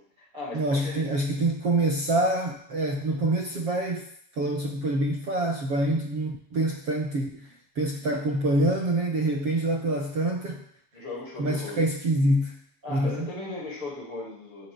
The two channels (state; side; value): late; left; 7.3 ms